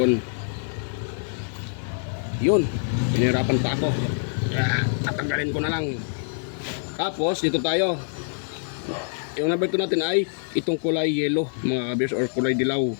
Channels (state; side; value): silent; right; 62 dB below the other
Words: Yun. Pinahirapan pa ako. Tatanggalin ko na lang. Tapos dito tayo. Yung number 2 natin ay itong kulay yellow mga ka-viewers or kulay dilaw.